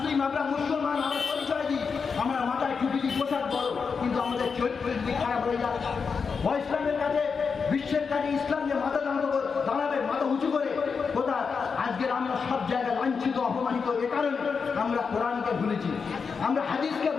আমরা মুসলমান, আমরা পরিচয় দিই, আমরা মাথায় টুপি দিই, পোশাক বড়, কিন্তু আমাদের চরিত্রের দিক খারাপ হয়ে যায়। ইসলামের কাছে বিশ্বের কাছে ইসলাম যে মাথা দাঁড়াবে মাথা উঁচু করে কোথায়? আজকের আমরা সব জায়গায় লাঞ্ছিত অপমানিত। এ কারণে আমরা কোরআনকে ভুলেছি, আমরা হাদিসকে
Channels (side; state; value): right; quieter; 5.5 dB